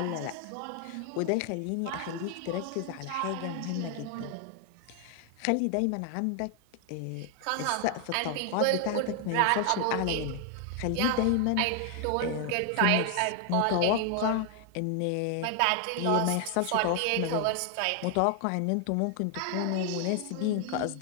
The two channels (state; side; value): different; both; correlation 0.00